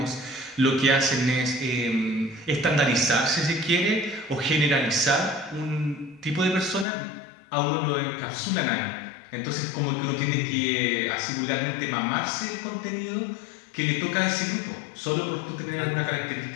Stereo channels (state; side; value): drops out; right; at 6.9 s